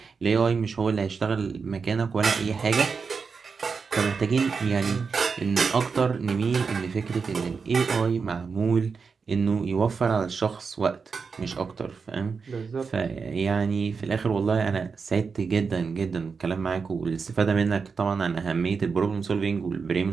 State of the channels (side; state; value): left; quieter; 5.3 dB